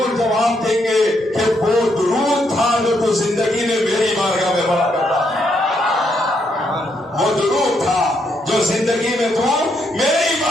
جواب دیں گے کہ وہ درود تھا جو تو زندگی میں میری بارگاہ میں پڑھا کرتا تھا، وہ درود تھا جو زندگی میں تو میری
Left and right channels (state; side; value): normal; both; correlation 0.76